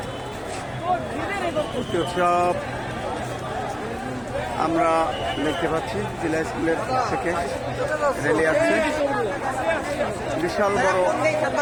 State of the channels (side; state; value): both; identical; correlation 1.00